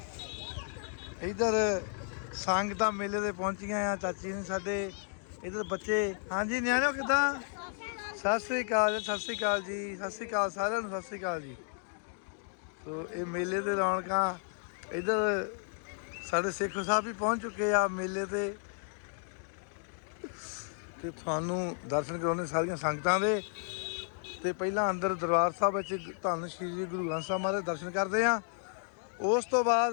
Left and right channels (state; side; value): silent; right; 56 dB below the other